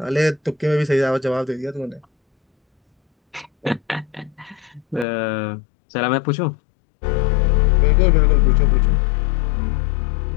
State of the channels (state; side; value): drops out; right; at 5.1 s